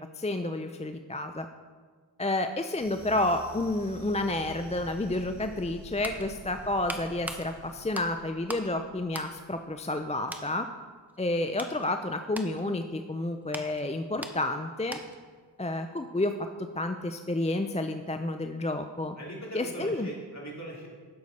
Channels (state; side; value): normal; both; correlation 0.38